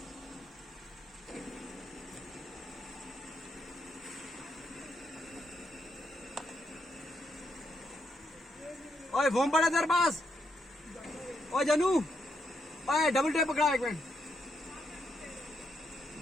ओए फोन पड़ा तेरे पास। ओए जानू, ओए डबल टेप पकड़ा एक मिनट।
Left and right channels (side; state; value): both; normal; correlation 0.78